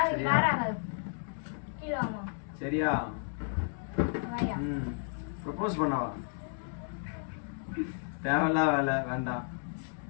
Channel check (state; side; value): silent; right; 56 dB below the other